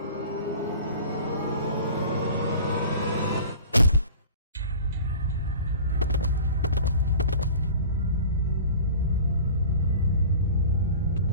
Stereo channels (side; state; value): both; inverted; correlation -0.41